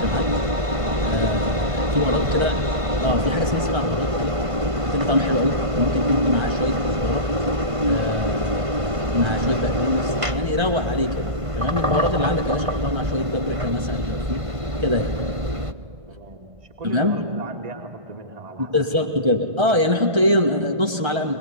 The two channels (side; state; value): left; late; 1.5 ms